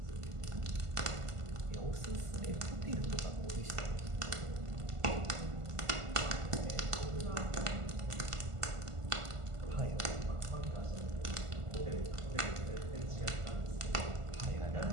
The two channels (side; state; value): left; late; 1.5 ms